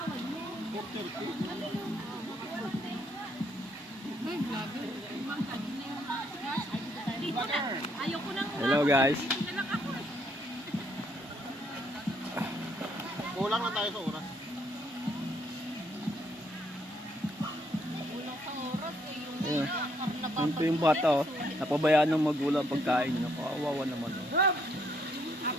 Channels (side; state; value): both; normal; correlation 0.71